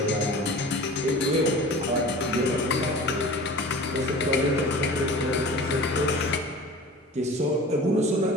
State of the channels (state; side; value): normal; both; correlation 0.39